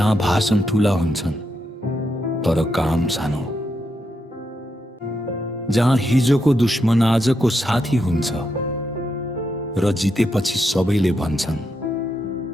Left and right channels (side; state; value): both; normal; correlation 0.82